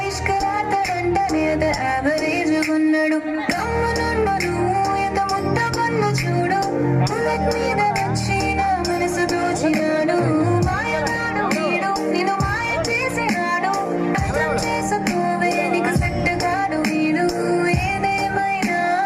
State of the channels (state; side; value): identical; both; correlation 1.00